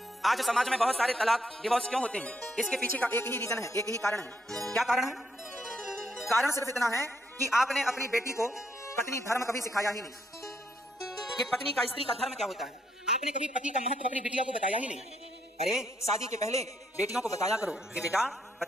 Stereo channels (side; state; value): both; normal; correlation 0.75